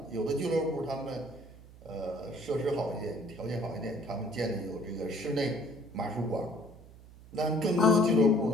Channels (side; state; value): right; noise; hum, 20 dB below the sound